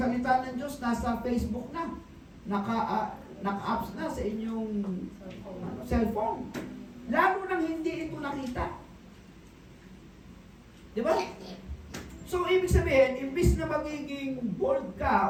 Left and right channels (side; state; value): both; identical; correlation 1.00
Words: ng Diyos, nasa Facebook na, naka-apps na sa inyong cellphone. Lalo nang hindi ito nakita. Di ba? So, ibig sabihin, imbis na magiging bold